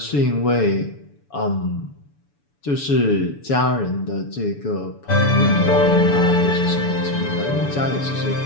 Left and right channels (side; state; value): right; late; 7.0 ms